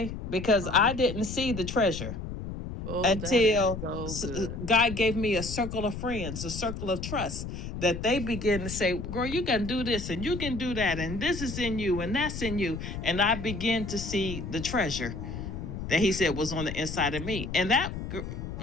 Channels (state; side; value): noise; left; rumble, 7 dB below the sound